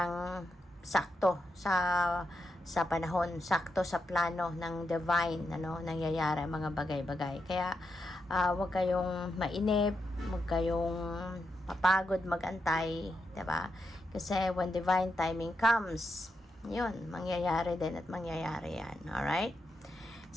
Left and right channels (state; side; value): normal; both; correlation 0.85